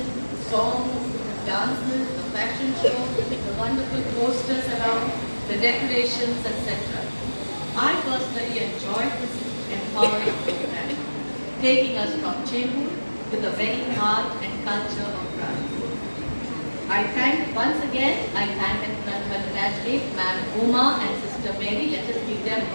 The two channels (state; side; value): inverted; both; correlation -1.00